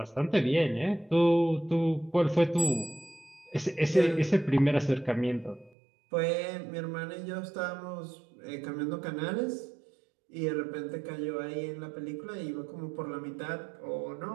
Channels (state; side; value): drops out; left; at 5.7 s